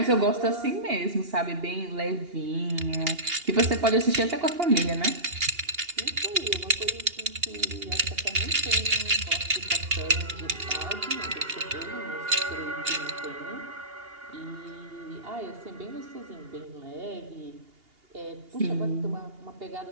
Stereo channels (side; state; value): left; late; 2.8 ms